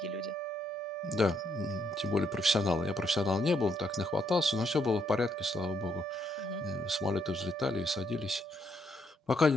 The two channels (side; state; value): both; normal; correlation 0.74